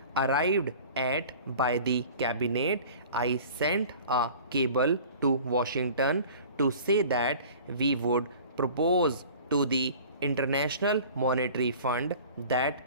arrived at by the cabinet, I sent a cable to Washington to say that we would propose to the International Monetary Fund that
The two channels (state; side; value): inverted; both; correlation -0.44